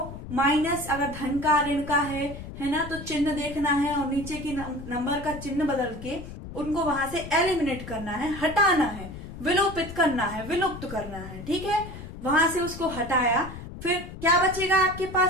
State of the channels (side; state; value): left; noise; rumble, 11 dB below the sound